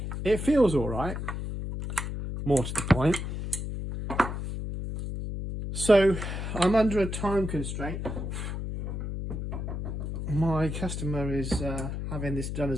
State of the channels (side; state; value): left; noise; hum, 5 dB below the sound